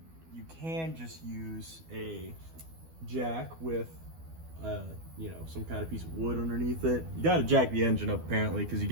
you can just use a jack with, you know, some kind of piece of wood underneath it. You got to jack the engine up apparently, because you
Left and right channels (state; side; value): late; left; 12 ms